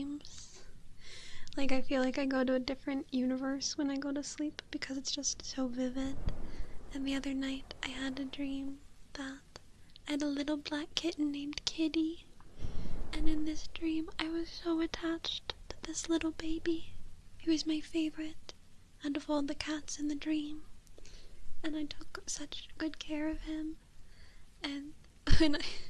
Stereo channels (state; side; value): identical; both; correlation 1.00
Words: Like, I feel like I go to a different universe when I go to sleep because it's just so vivid. And the other night, I had a dream that I had a little black kitten named Kitty. And in this dream, I was so attached to this little baby. He was my favorite out of all the cats in the dream. And I took such good care of him. And